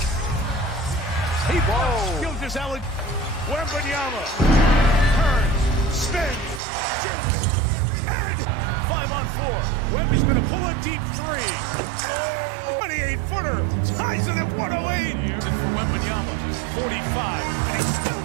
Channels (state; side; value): drops out; left; at 6.6 s